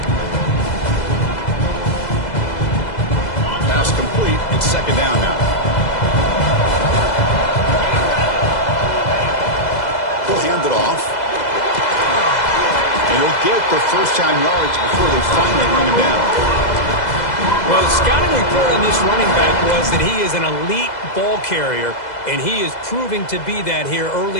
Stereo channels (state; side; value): late; right; 2.0 ms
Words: Pass complete. It's 2nd down now. Hand it off. And he'll get the 1st down yards before they finally bring him down. Well, the scouting report on this running back was that he is an elite ball carrier, and he is proving to be that here